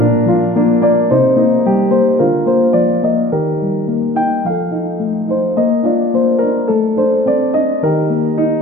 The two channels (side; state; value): both; normal; correlation 0.53